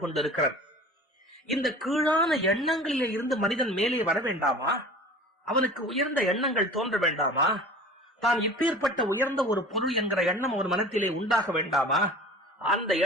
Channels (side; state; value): both; normal; correlation 0.41